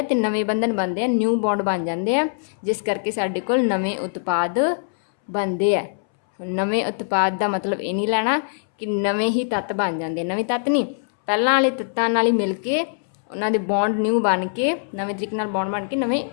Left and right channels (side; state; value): right; silent; 64 dB below the other